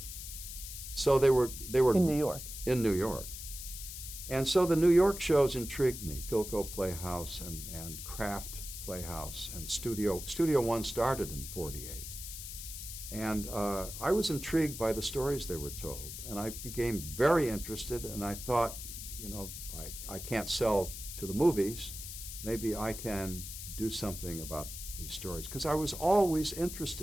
So they were In New York. in New York. And so the New York shows intrigued me, Philco Playhouse and Kraft Playhouse, and Studio One started in '48. And I was intrigued by the stories they were told, and I became very interested, and I thought, you know, I can't sell to the movies, maybe I can do something about these stories, because I was always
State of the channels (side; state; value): left; noise; hiss, 9 dB below the sound